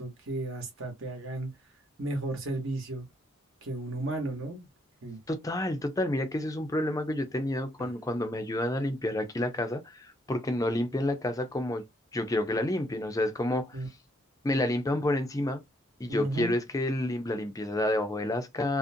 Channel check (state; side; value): normal; both; correlation 0.72